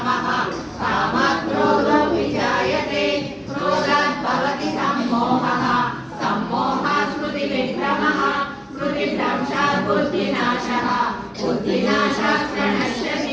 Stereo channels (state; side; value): identical; both; correlation 1.00